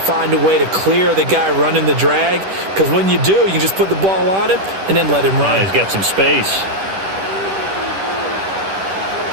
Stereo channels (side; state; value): left; late; 10 ms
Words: a way to clear the guy running the drag, because when you do, you can just put the ball on him and then let him run. Yeah, he's got some space.